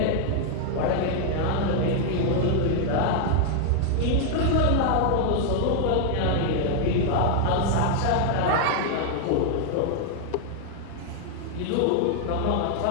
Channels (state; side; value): different; both; correlation 0.00